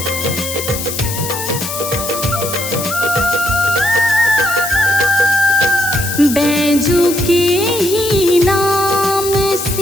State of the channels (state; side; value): noise; left; hiss, 6 dB below the sound